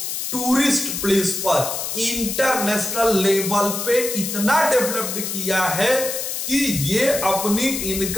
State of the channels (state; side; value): noise; left; hiss, 4 dB below the sound